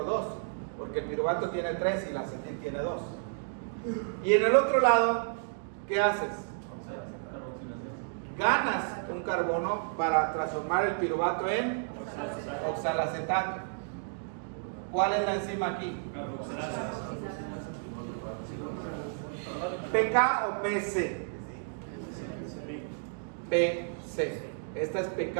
porque el piruvato tiene 3 y la acetil tiene 2. Y en el otro lado, ¿qué haces? Ganas un carbono para transformar el piruvato en oxalacetato. ¿Cuál es la enzima aquí? ¿PK o PC? PC. Esta es PK.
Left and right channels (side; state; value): left; silent; digital silence